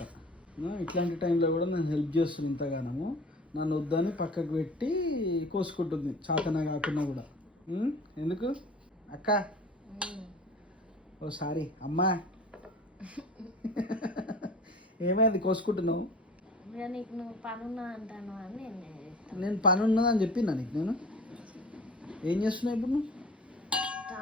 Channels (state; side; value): normal; both; correlation 0.41